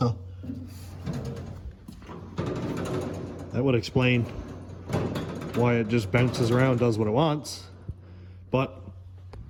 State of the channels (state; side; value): identical; both; correlation 1.00